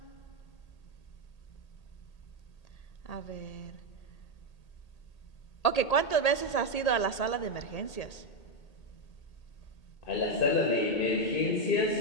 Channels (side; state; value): right; late; 1.8 ms